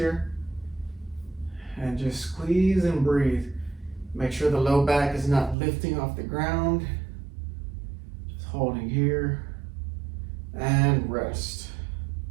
And just squeeze and breathe. Make sure the low back is not lifting off the ground. Just holding here and rest.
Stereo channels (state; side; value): drops out; left; at 5.6 s